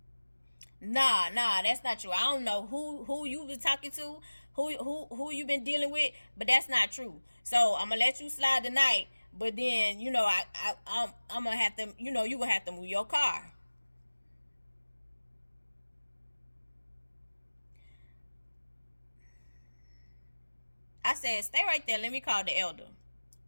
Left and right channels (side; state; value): both; inverted; correlation -1.00